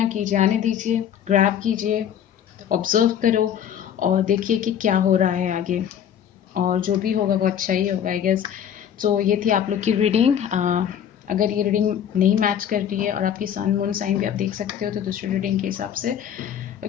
कीजिए, आने दीजिए, ग्रैब कीजिए, ऑब्जर्व करो और देखिए कि क्या हो रहा है आगे, और जो भी होगा वो अच्छा ही होगा आई गेस। सो ये थी आप लोग की रीडिंग। अगर ये रीडिंग नहीं मैच कर रही है और आपकी सन मून साइन भी आप देख सकते हो तो दूसरी रीडिंग के हिसाब से।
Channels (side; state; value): right; quieter; 9.3 dB